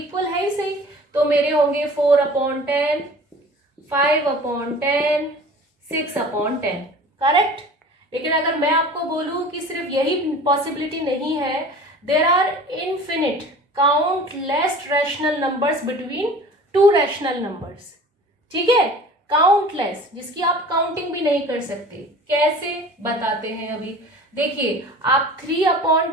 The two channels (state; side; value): normal; both; correlation 0.42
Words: है ही सही, तो मेरे होंगे 4/10, 5/10, 6/10, करेक्ट। लेकिन अगर मैं आपको बोलूं कि सिर्फ यही पॉसिबिलिटी नहीं है, there are infinite countless rational numbers between 2 rational numbers. ठीक है, काउंटलेस, जिसकी आप काउंटिंग भी नहीं कर सकते। कैसे बताते हैं अभी। देखिए, आप